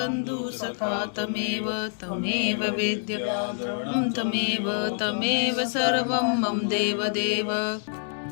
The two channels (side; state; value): right; silent; 61 dB below the other